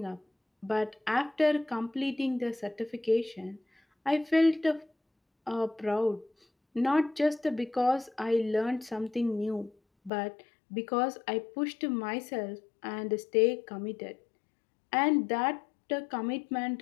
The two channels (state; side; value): drops out; right; at 10.1 s